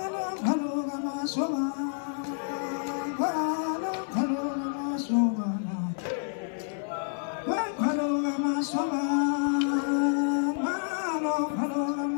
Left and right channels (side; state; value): right; silent; 59 dB below the other